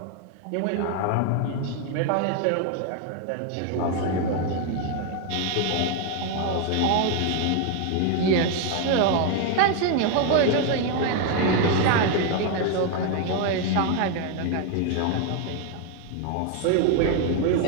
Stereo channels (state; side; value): different; both; correlation 0.01